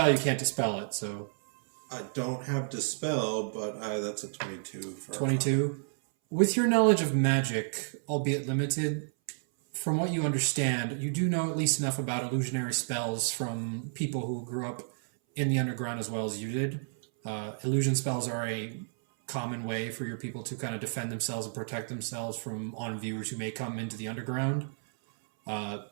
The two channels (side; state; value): left; silent; 57 dB below the other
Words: you can't dispel it, so... I don't have dispel, but that's a 22 for 22. With your knowledge of magic, albeit limited, from what you understand, you do know at least enough about illusionary spells from people who grew up in the underground as well as you did. Illusion spells are a common way for your people to kind of defend themselves and protect themselves from on-viewers who may come into the underground.